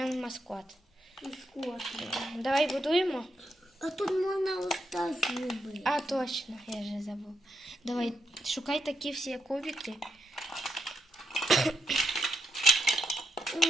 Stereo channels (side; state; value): both; normal; correlation 0.81